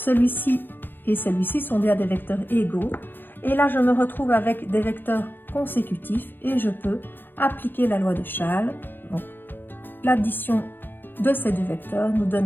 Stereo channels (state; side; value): late; right; 0.096 ms